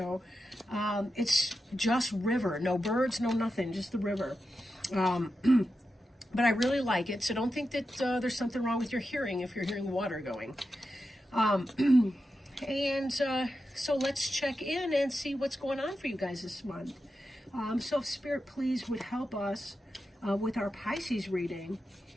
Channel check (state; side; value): normal; both; correlation 0.90